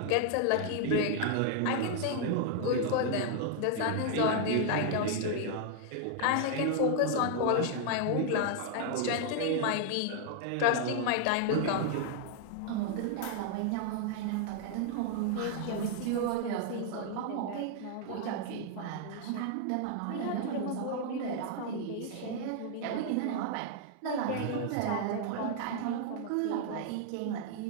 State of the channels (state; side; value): different; both; correlation 0.00